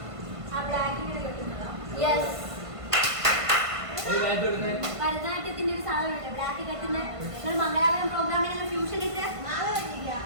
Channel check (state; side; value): late; left; 1.5 ms